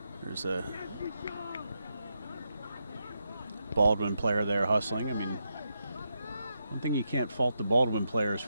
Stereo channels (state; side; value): inverted; both; correlation -0.84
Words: there's a Baldwin player there hustling. I mean, one thing you can't fault the Baldwin players